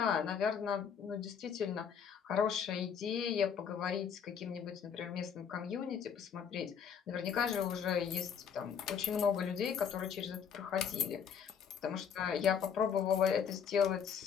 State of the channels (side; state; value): right; quieter; 7.4 dB